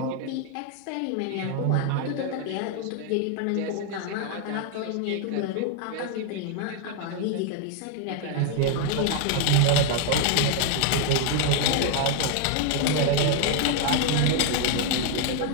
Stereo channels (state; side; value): different; both; correlation 0.00